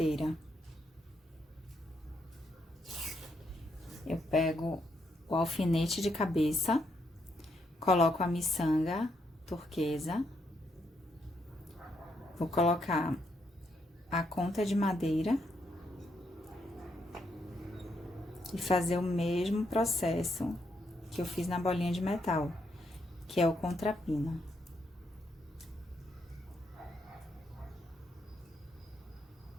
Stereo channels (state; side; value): normal; both; correlation 0.77